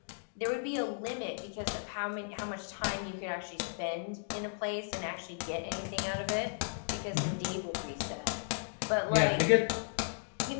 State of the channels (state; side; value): silent; right; digital silence